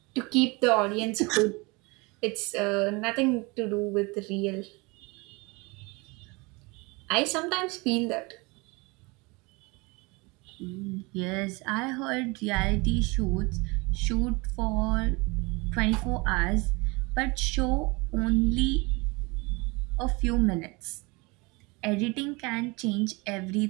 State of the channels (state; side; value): quieter; left; 26.4 dB